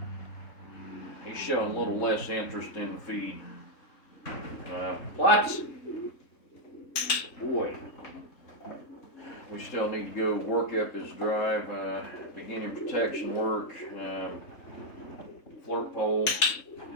He's showing a little less interest in the feed. Plots. Boy. We still need to go work up his drive, beginning protection work, flirt pole.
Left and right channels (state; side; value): late; right; 3.7 ms